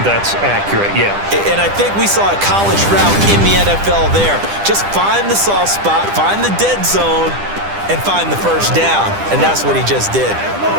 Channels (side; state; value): left; late; 10 ms